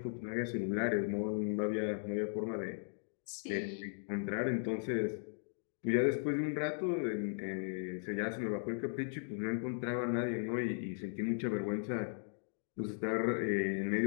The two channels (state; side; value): silent; right; digital silence